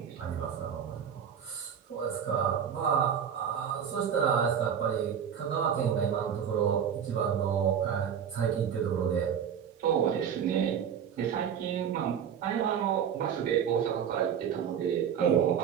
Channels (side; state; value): left; quieter; 8.2 dB